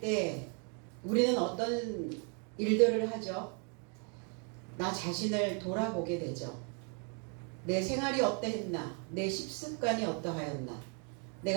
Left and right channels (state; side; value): quieter; left; 38.4 dB